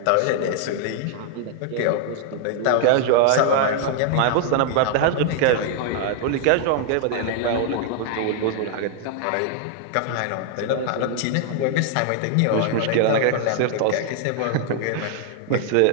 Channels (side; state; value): both; different; correlation 0.00